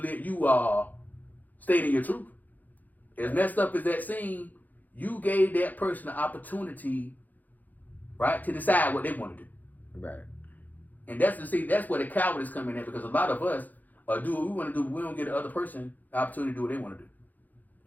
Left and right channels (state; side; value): late; right; 0.083 ms